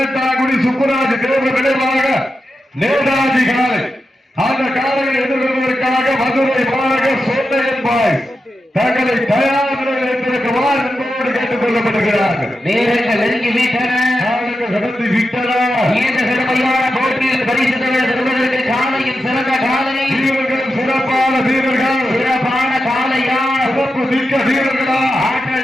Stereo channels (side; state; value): both; normal; correlation 0.89